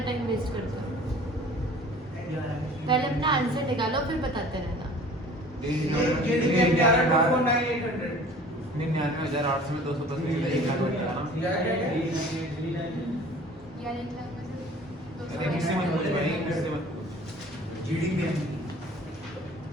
टाइम वेस्ट करते हो। पहले अपना आंसर निकालो फिर बताते रहना। 99,800 में 210 निकला, 1 लाख बचा ना। किससे मत पूछ भाई, किससे मत पूछ। जीडीपी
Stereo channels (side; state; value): both; normal; correlation 0.47